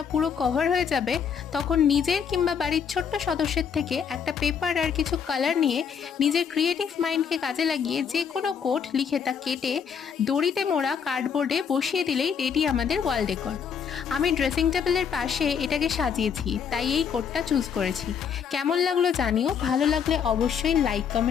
পুরো কভার হয়ে যাবে, তখন নিজের কিংবা বাড়ির ছোট্ট সদস্যের থেকে একটা পেপার আর কিছু কালার নিয়ে নিজের ক্রিয়েটিভ মাইন্ডকে কাজে লাগিয়ে যে কোনো কোড লিখে তা কেটে দড়িতে মোড়া কার্ডবোর্ডে বসিয়ে দিলেই রেডি আমাদের ওয়াল ডেকর। আমি ড্রেসিং টেবিলের পাশে এটাকে সাজিয়েছি, তাই এই কোডটা চুজ করেছি। কেমন লাগলো জানিও, ভালো লাগলে অবশ্যই লাইক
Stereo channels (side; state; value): right; quieter; 7.1 dB